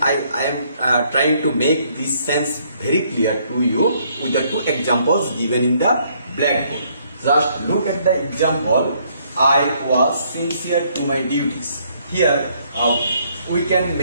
I am trying to make this sense very clear to you with the two examples given in the blackboard. Just look at the example. I was sincere to my duties. Here we can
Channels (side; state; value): both; inverted; correlation -0.67